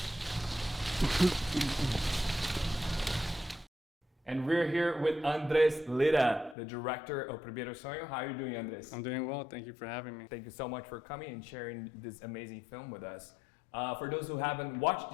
And we're here with Andrés Lira, the director of Primeiro Sueño. How are you doing, Andrés? I'm doing well. Thank you for having me. Thank you so much for coming and sharing this amazing film with us. For those who haven't watched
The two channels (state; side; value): drops out; right; at 6.6 s